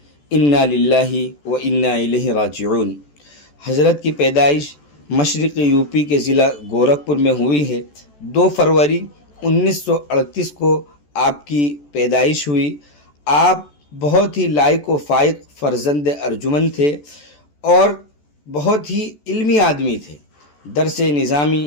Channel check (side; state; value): right; late; 14 ms